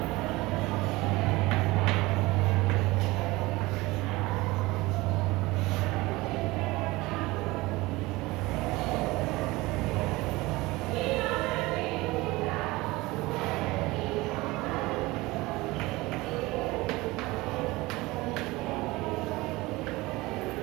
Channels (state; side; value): quieter; left; 21.1 dB